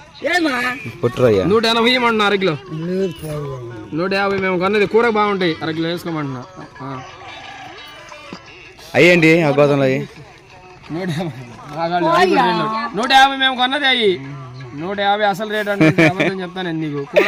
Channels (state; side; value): identical; both; correlation 1.00